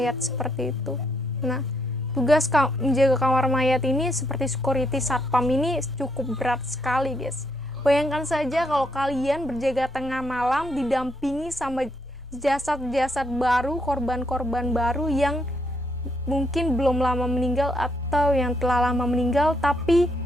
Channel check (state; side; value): normal; both; correlation 0.75